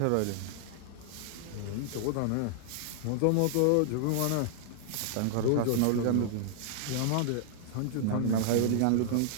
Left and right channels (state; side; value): different; both; correlation -0.01